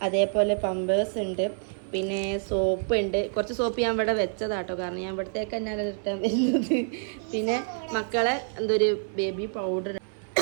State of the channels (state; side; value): silent; left; 60 dB below the other